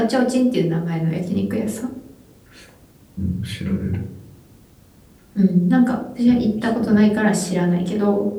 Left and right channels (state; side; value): identical; both; correlation 1.00